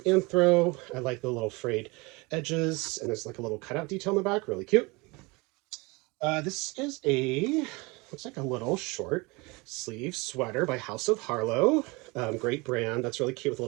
I like the little frayed edges, and there's like a little cutout detail in the back, really cute. This is looks like a little short sleeve sweater by House of Harlow. Great brand. That's really cute with a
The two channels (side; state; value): left; quieter; 25.9 dB